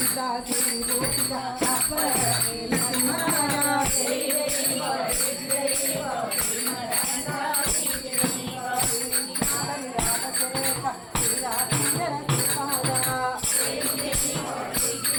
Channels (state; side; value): identical; both; correlation 1.00